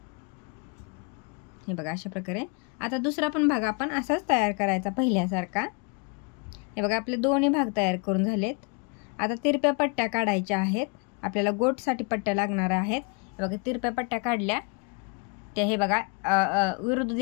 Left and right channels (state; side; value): quieter; right; 31.9 dB